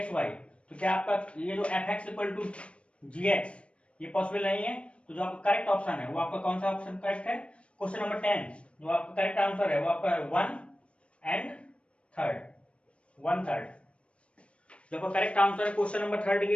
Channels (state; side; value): late; right; 0.061 ms